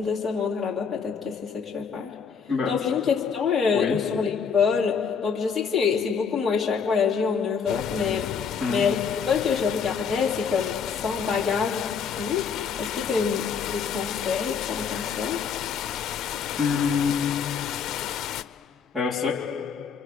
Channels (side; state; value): right; quieter; 6.3 dB